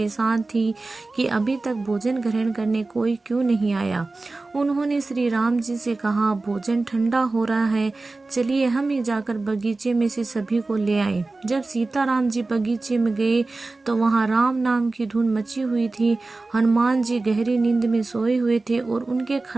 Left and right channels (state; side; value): quieter; left; 3.4 dB